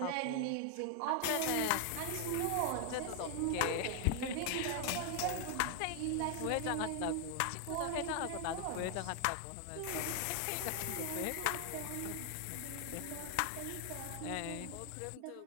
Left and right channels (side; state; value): both; different; correlation 0.00